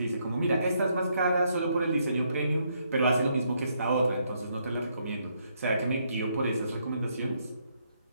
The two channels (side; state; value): both; inverted; correlation -0.74